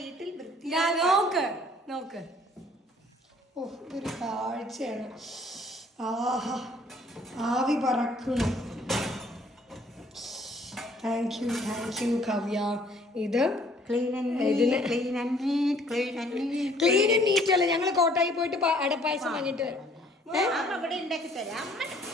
വൃത്തി. നോക്ക് ഓ ഇതൊരു കാഴ്ചയാണ്. ആഹാ ആവി പറക്കണം. Thank you Kavya. ഇത് ക്ലീൻ ആൻഡ് നീറ്റ് അല്ല. ഞങ്ങൾ കോട്ടായി പോയിട്ട് അടപ്പായസം വാങ്ങിട്ട് വരാം.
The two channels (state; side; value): normal; both; correlation 0.59